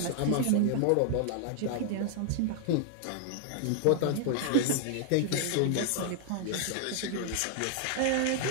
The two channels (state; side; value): different; both; correlation 0.00